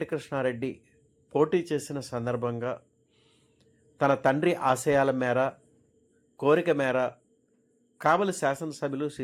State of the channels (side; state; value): both; identical; correlation 1.00